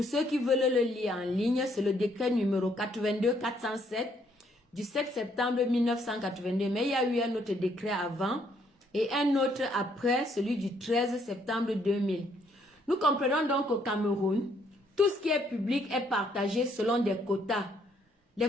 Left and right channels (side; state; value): both; normal; correlation 0.69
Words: ceux qui veulent le lire en ligne, c'est le décret numéro 82-407 du 7 septembre 1982. Mais il y a eu un autre décret avant et un autre après, celui du 13 septembre 2000. Nous comprenons donc qu'au Cameroun, tout ce qui est public est partagé selon des quotas.